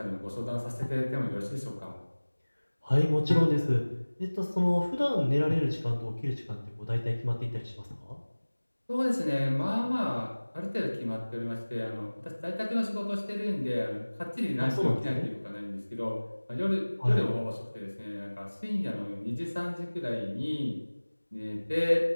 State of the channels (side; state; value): both; inverted; correlation -1.00